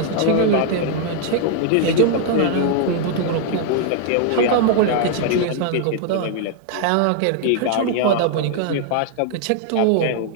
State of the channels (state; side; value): different; both; correlation 0.00